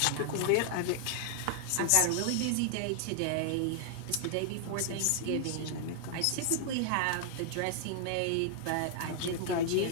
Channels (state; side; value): different; both; correlation 0.00